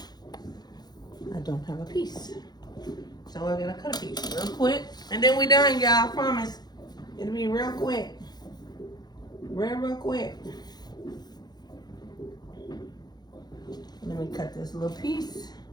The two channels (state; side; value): late; right; 0.20 ms